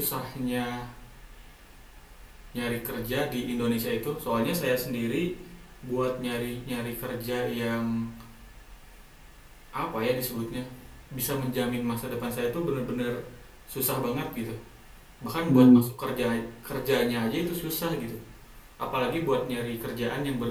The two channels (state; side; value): identical; both; correlation 1.00